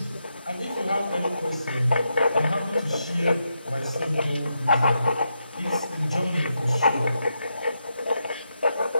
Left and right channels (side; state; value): both; inverted; correlation -0.84